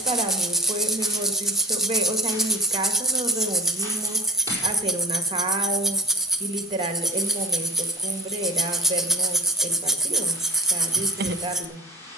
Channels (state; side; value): normal; both; correlation 0.40